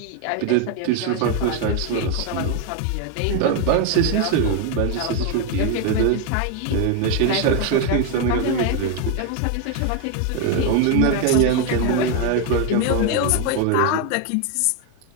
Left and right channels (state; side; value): different; both; correlation 0.01